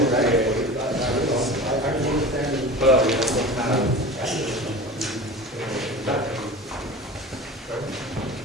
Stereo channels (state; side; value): normal; both; correlation 0.34